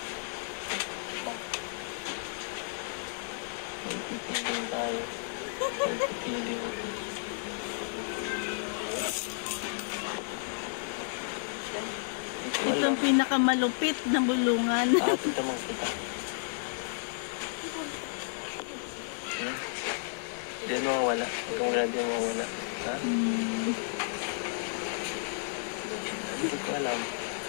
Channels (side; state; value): right; silent; digital silence